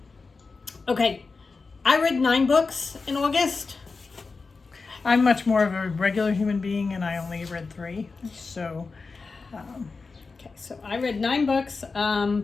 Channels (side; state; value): right; quieter; 4.3 dB